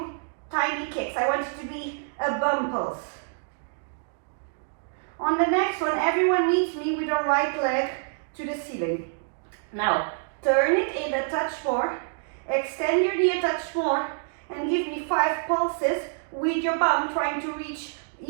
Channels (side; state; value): left; silent; digital silence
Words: tiny kicks. I want you to be a bum pulse. On the next one, everyone meets me with the right leg to the ceiling. Now, turn it in a touch more, extend your knee a touch more, and give me 5 pulses with your bum trying to reach